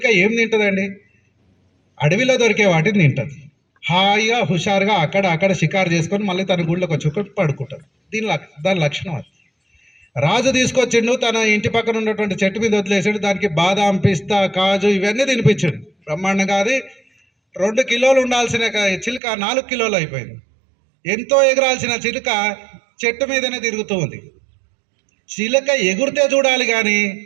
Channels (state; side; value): drops out; left; at 19.2 s